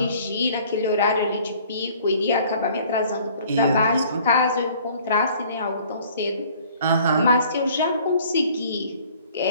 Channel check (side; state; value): both; inverted; correlation -0.55